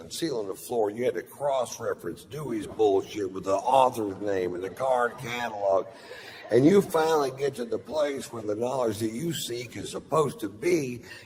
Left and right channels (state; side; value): identical; both; correlation 1.00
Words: ceiling to floor. You had to cross-reference Dewey's bullshit with the author's name and the card catalog. And you finally get to the place where the knowledge that you seek is supposed to be,